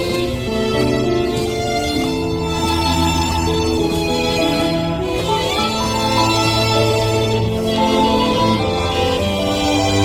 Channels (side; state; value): both; identical; correlation 1.00